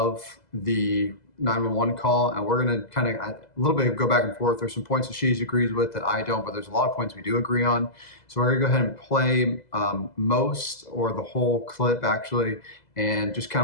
the 911 call, and we're going to kind of a little bit go back and forth. There's some points that she agrees with that I don't, but there's a lot of points we do agree on. So we're going to go ahead and play most or the whole clip actually, and just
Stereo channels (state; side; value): late; right; 2.0 ms